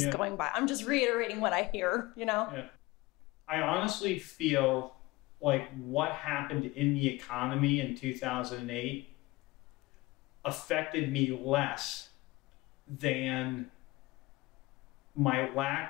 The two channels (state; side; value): quieter; right; 20.9 dB